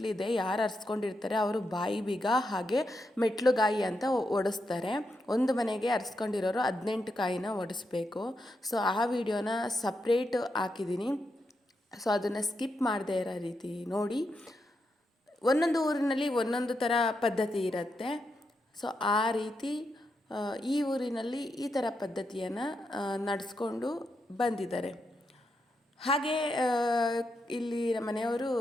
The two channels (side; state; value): both; normal; correlation 0.84